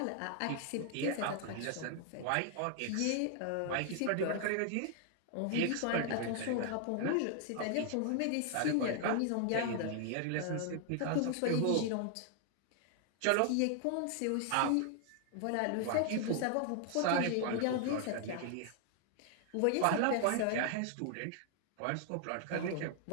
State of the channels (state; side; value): different; both; correlation 0.00